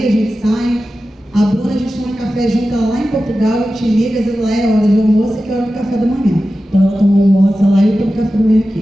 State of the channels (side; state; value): both; normal; correlation 0.94